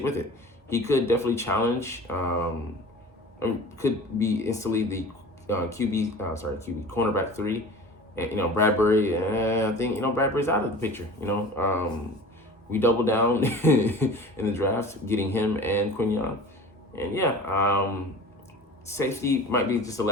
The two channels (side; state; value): both; normal; correlation 0.39